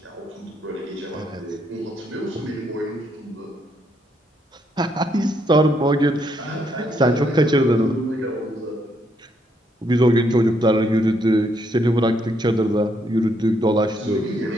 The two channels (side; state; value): both; normal; correlation 0.74